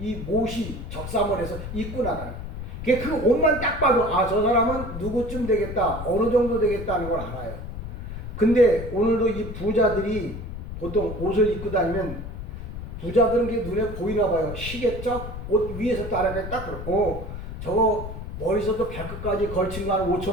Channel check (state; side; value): noise; left; rumble, 8 dB below the sound